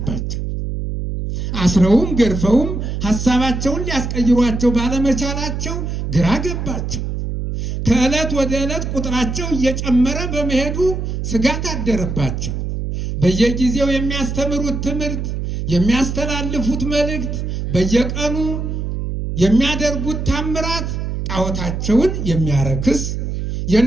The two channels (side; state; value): right; noise; hum, 3 dB below the sound